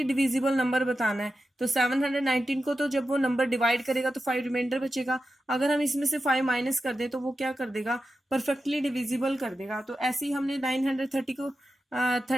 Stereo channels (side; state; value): both; normal; correlation 0.91